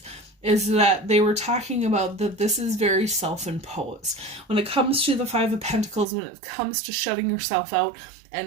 is that they were talking about that this is very self-imposed. When it comes to the Five of Pentacles, when it comes to shutting yourself out,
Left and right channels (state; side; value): drops out; left; at 6.1 s